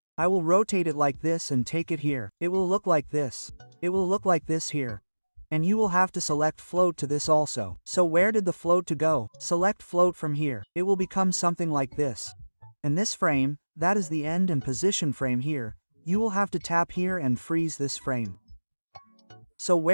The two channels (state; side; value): inverted; both; correlation -1.00